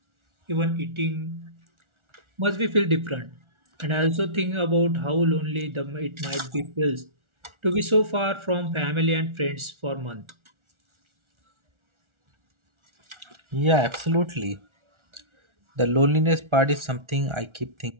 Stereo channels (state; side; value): late; left; 1.4 ms